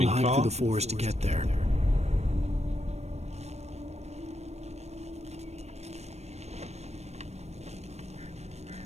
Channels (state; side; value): late; left; 0.31 ms